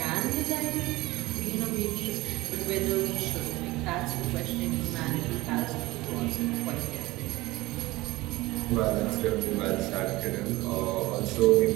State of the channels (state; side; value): quieter; left; 19.7 dB